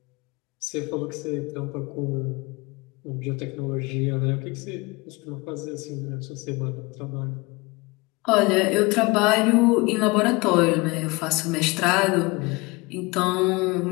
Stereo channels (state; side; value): quieter; right; 25.1 dB